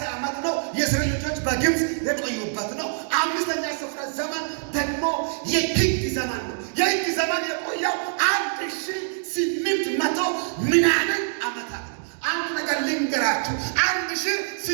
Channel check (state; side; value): silent; left; digital silence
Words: ዓመት ነው የእስራኤል ልጆች በግብፅ የቆዩበት ነው። አምስተኛ ስፍረ ዘመን ደግሞ የህግ ዘመን ነው። የህግ ዘመን የቆየው 1800 ምናምን ዓመታት ነው። አንድ ነገር ልንገራችሁ፣